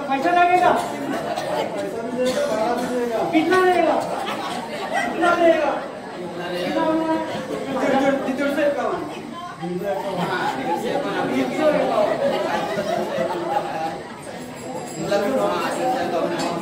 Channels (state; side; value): identical; both; correlation 1.00